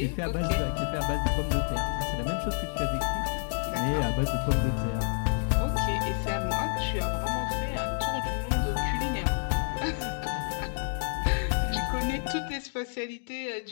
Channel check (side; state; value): right; silent; digital silence